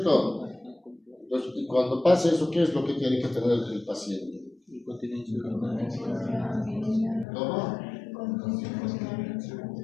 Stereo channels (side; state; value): right; drops out; at 7.2 s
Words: Entonces, y cuando pasa eso, ¿qué es lo que tiene que tener el paciente? ¿Cómo?